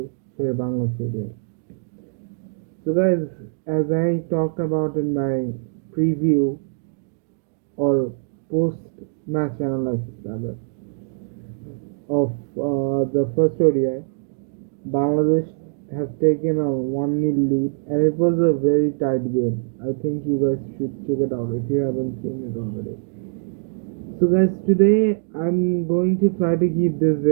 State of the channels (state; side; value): silent; left; 64 dB below the other